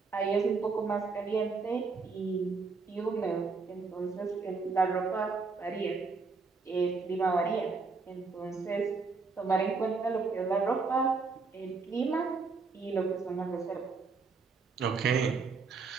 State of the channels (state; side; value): quieter; left; 4.5 dB